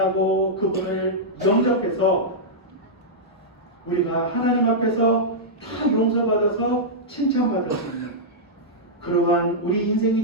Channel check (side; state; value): both; normal; correlation -0.10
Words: 그분을 영접해서 우리가 하나님 앞에서 다 용서받아서 칭찬받을 수 있는 그러한 우리